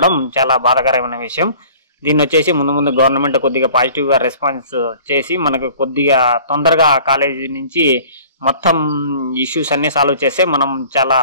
చాలా బాధాకరమైన విషయం. దీన్ని వచ్చేసి ముందు గవర్నమెంట్ కొద్దిగా పాజిటివ్గా రెస్పాన్స్ చేసి మనకు కొద్దిగా తొందరగా కాలేజీ నుంచి మొత్తం ఇష్యూస్ అన్నీ సాల్వ్ చేస్తే మనం చాలా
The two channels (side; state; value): both; inverted; correlation -0.48